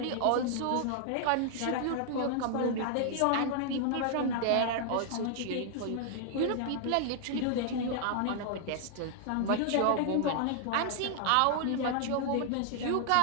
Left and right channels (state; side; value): different; both; correlation -0.01